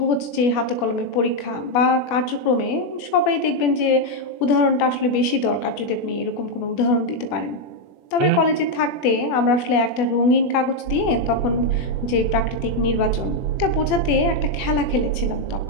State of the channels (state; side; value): late; right; 21 ms